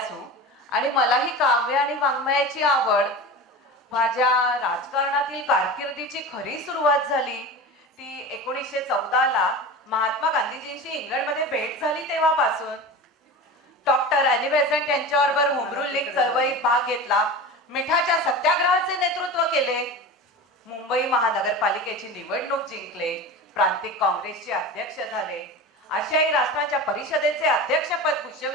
आणि मलाही काव्य आणि वाङ्मयाची आवड. माझ्या राजकारणातील कारकिर्दीची खरी सुरुवात झाली ती 1914ला महात्मा गांधीजींशी इंग्लंडमध्ये भेट झाली तेव्हापासून. डॉक्टर अॅनी बेझंट यांच्याबरोबर होमरूल लीग चळवळीत भाग घेतला. मिठाच्या सत्याग्रहाचे नेतृत्व केले. मुंबई महानगरपालिकेची निवडणूक जिंकले. प्रांतिक काँग्रेसचे अध्यक्ष झाले. आशियाई राष्ट्रांच्या परिषदेचे अध्यक्षपद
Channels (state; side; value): normal; both; correlation 0.30